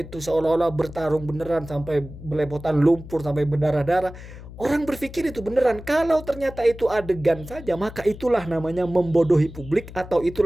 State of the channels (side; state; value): left; noise; hum, 15 dB below the sound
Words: seolah-olah bertarung beneran sampai belepotan lumpur, sampai berdarah-darah. Orang berpikir itu beneran. Kalau ternyata itu adegan saja, maka itulah namanya membodohi publik atau